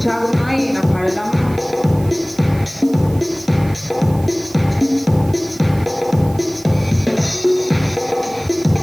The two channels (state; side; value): noise; right; hiss, 21 dB below the sound